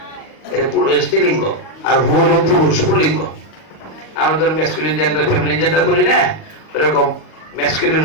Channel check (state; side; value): late; right; 38 ms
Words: এটা স্ত্রীলিঙ্গ, আর হু হলো পুরুষ পুল্লিঙ্গ। আমরা ধরুন ম্যাসকুলিন জেন্ডার ফেমিনিন জেন্ডার করি না, এরকম ম্যাসকুলিন